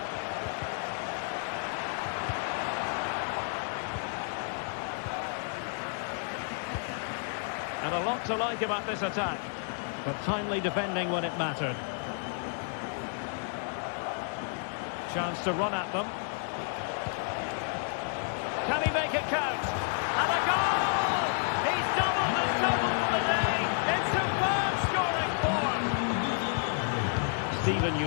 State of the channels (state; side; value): silent; right; 57 dB below the other